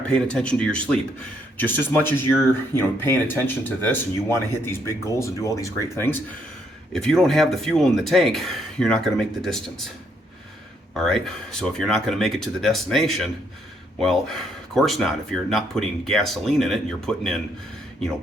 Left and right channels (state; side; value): normal; both; correlation 0.72